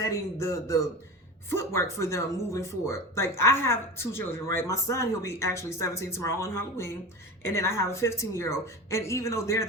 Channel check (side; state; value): both; normal; correlation 0.29